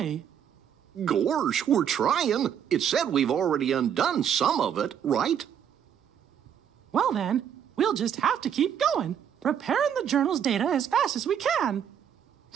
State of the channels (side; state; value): left; quieter; 8.8 dB